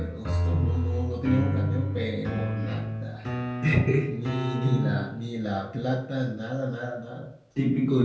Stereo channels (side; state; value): both; identical; correlation 1.00